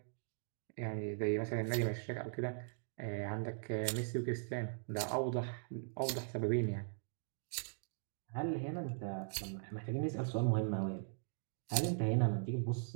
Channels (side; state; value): left; silent; digital silence